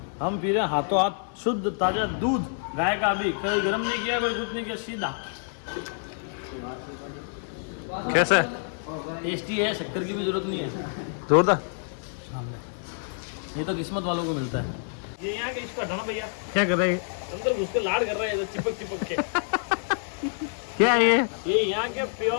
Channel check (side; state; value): right; silent; digital silence